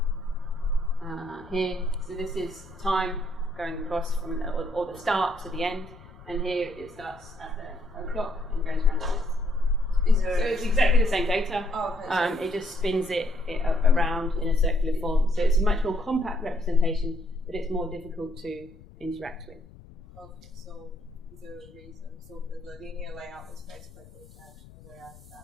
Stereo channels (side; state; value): left; noise; rumble, 21 dB below the sound